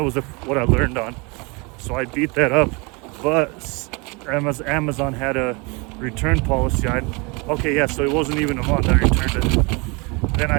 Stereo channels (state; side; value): quieter; left; 29.0 dB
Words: was what I learned on. So I beat that up, but Amazon had a return policy. Okay, yeah, so it wasn't even a month I returned it. Then